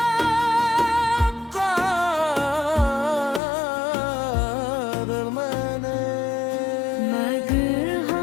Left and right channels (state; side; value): drops out; right; at 3.4 s